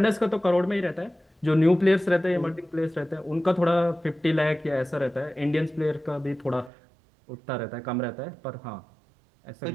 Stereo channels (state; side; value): drops out; left; at 6.7 s